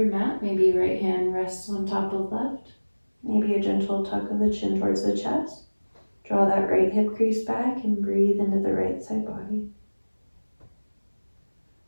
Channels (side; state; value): both; inverted; correlation -1.00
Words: mat. Maybe right hand rests on top of left. Maybe a gentle tuck of the chin towards the chest. Draw that right hip crease back and breathe into the right side body.